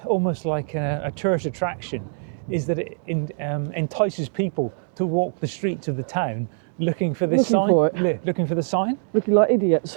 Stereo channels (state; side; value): silent; left; digital silence